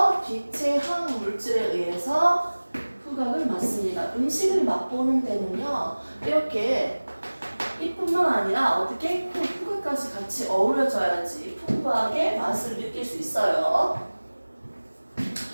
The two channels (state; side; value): inverted; both; correlation -1.00